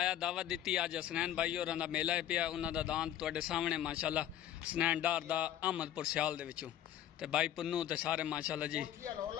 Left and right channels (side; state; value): right; quieter; 11.5 dB